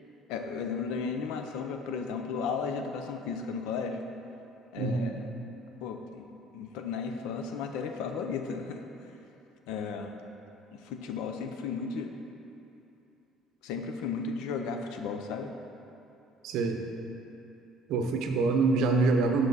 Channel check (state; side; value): normal; both; correlation 0.48